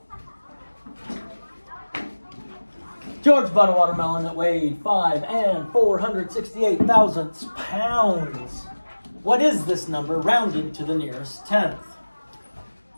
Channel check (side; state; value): both; inverted; correlation -1.00